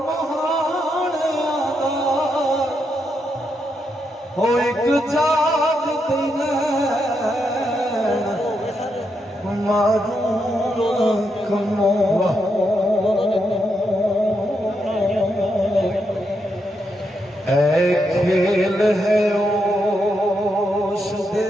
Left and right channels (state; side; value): normal; both; correlation 0.82